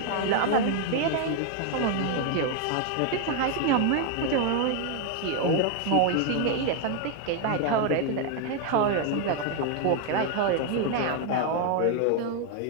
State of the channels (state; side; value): different; both; correlation 0.01